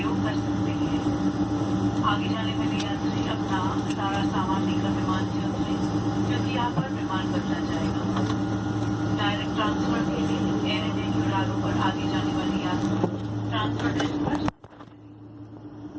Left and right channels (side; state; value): both; identical; correlation 1.00